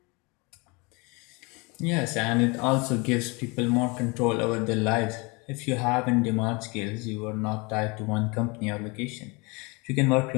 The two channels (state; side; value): quieter; right; 28.2 dB